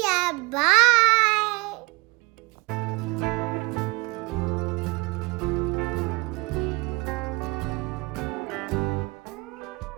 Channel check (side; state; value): left; quieter; 25.4 dB